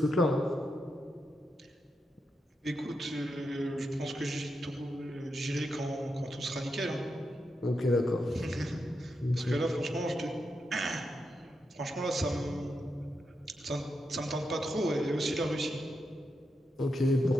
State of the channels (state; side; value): normal; both; correlation 0.85